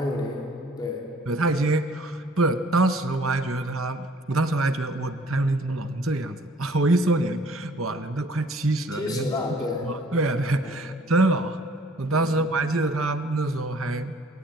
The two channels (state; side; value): normal; both; correlation 0.56